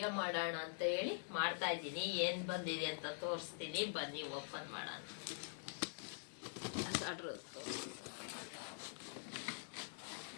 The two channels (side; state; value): right; silent; digital silence